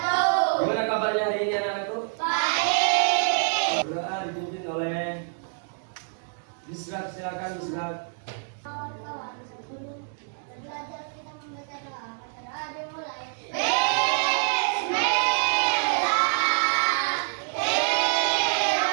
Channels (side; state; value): left; silent; 61 dB below the other